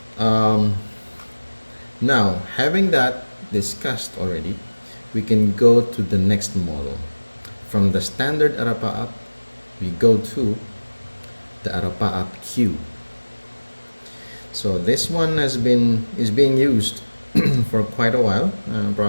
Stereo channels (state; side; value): inverted; both; correlation -1.00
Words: Now, having that discussed already, we can go to the next model. From the standard Arapaap, we go to the Arapaap Q. So this one is being used for quite a while,